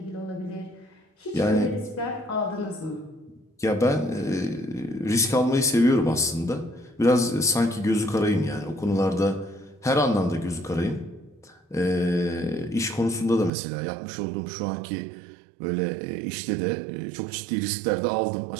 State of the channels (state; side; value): drops out; left; at 13.5 s